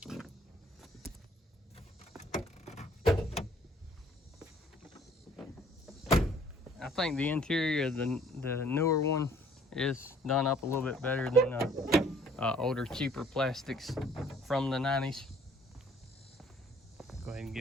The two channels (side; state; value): both; normal; correlation 0.57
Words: I think the interior of the newer one is done up a little bit better than older, cheaper plastics from the 90s. Go ahead and